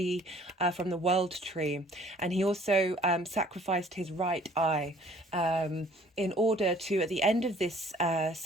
from the world tree, and he also sacrificed his right eye in order to, at the end of this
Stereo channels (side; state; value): both; normal; correlation 0.55